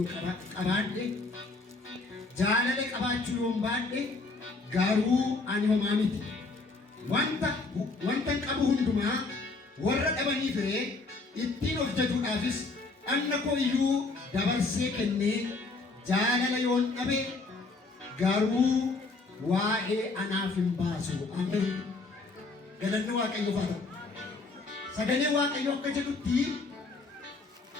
qabaadhe jaalala qabaachuu yoon baadhe garuu ani homaa miti. Wanta qabu hundumaa warra dhabanii fire ittiin of jajuudhaafis anna koo iyyuu dabarsee kennee jaalala yoon dhabe garuu waa'ee anaaf hin baasu. Ameen. Galanni Waaqayyoof haa ta'u. Sagalee Waaqayyoo akka jedhutti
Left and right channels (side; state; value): right; quieter; 3.6 dB